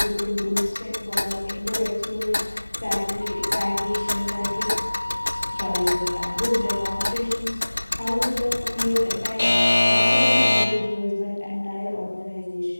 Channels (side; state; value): both; inverted; correlation -1.00